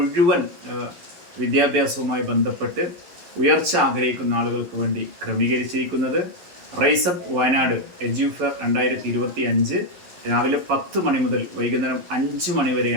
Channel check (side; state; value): left; late; 11 ms